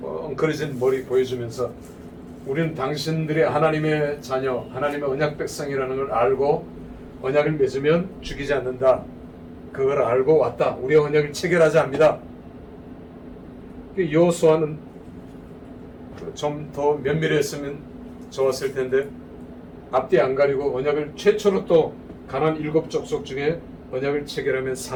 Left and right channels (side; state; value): both; identical; correlation 1.00